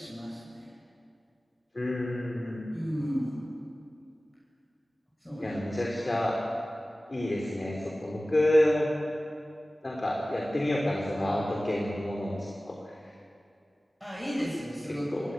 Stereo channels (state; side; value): normal; both; correlation 0.97